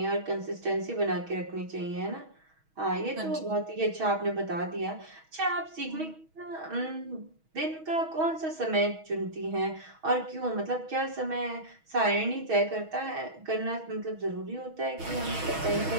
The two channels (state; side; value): late; left; 6.3 ms